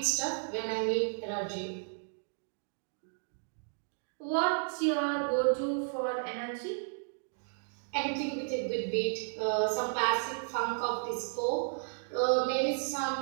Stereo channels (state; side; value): silent; left; digital silence